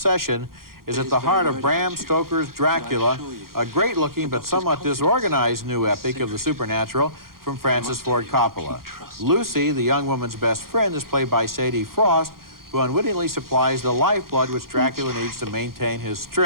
is at the heart of Bram Stoker's Dracula, a great-looking but somewhat disorganized new epic of the supernatural from Francis Ford Coppola. Lucy, the young woman's best friend, is played by Sadie Frost, who unwittingly supplies the lifeblood which Dracula needs to maintain his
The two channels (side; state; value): left; late; 0.92 ms